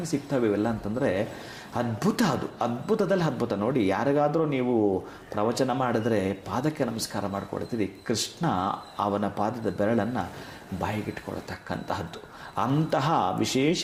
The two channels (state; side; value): identical; both; correlation 1.00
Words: ಸಿಗ್ತವೆ ಇವೆಲ್ಲ ಅಂತಂದರೆ ಅದ್ಭುತ. ಅದು ಅದ್ಭುತದಲ್ಲಿ ಅದ್ಭುತ. ನೋಡಿ, ಯಾರಿಗಾದರೂ ನೀವು ಪ್ರವಚನ ಮಾಡಿದ್ರೆ ಪಾದಕ್ಕೆ ನಮಸ್ಕಾರ ಮಾಡಿಕೊಡ್ತೀರಿ, ಕೃಷ್ಣ ಅವನ ಪಾದದ ಬೆರಳನ್ನು ಬಾಯಿಗಿಟ್ಕೊಳ್ತಕ್ಕಂತಹದ್ದು. ಅಂತಹ